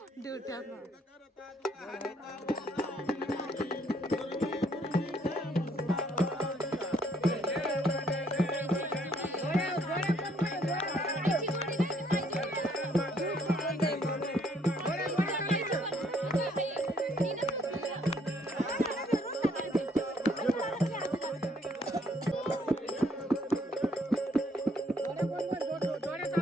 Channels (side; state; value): both; normal; correlation 0.66